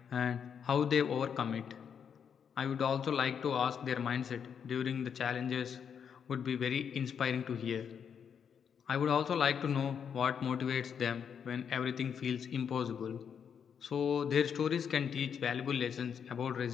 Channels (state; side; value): quieter; right; 7.5 dB